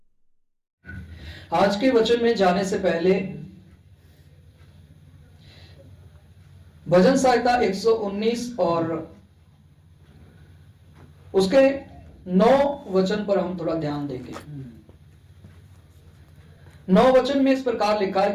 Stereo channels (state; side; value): identical; both; correlation 1.00